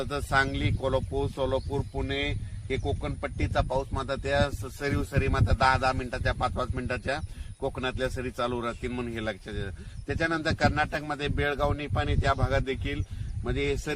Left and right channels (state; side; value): identical; both; correlation 1.00